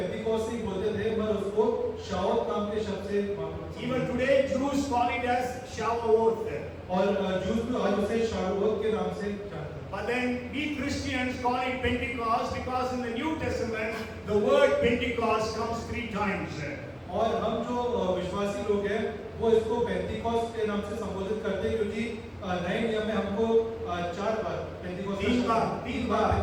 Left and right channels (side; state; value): both; identical; correlation 1.00